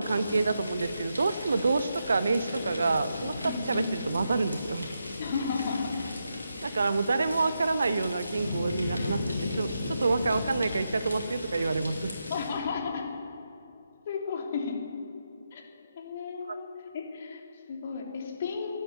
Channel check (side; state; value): both; inverted; correlation -0.84